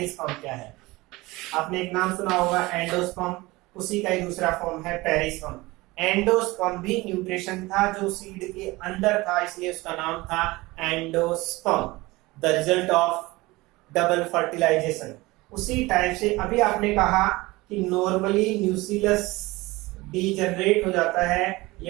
क्या है? आपने एक नाम सुना होगा एंडोस्पर्म, उसी का ही दूसरा फॉर्म है पेरिस्पर्म। एंडोस्पर्म भी न्यूट्रिशन था जो सीड के अंदर था, इसलिए उसका नाम था endosperm, the result of double fertilisation. उसी टाइप से अभी आपने कहा कि नॉर्मली न्यूक्लियस डीजनरेट हो जाता है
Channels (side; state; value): left; quieter; 21.1 dB